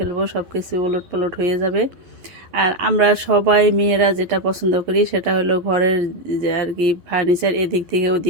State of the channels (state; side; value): late; left; 11 ms